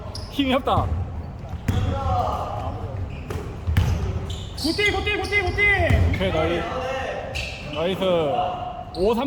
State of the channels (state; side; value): identical; both; correlation 1.00